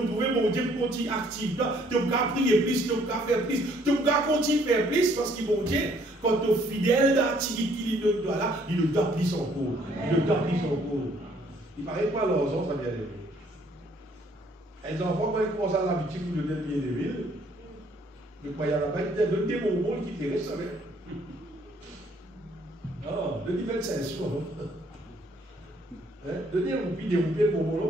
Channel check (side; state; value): both; normal; correlation 0.63